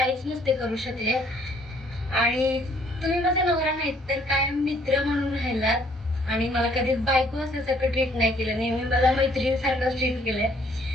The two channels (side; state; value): both; normal; correlation 0.63